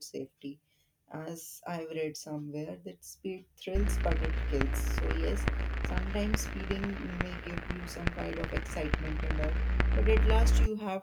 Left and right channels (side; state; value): both; identical; correlation 1.00